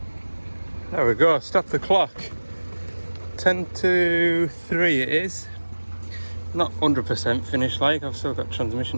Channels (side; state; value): both; inverted; correlation -1.00